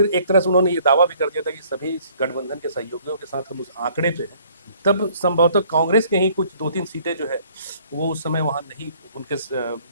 एक तरह से उन्होंने ये दावा भी कर दिया था कि सभी गठबंधन के सहयोगियों के साथ हम उस आंकड़े पे हैं, तब संभवतः कांग्रेस के ही कुछ 2-3 सीटें जो है वो उस समय वहां नहीं, उनके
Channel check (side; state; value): both; inverted; correlation -0.59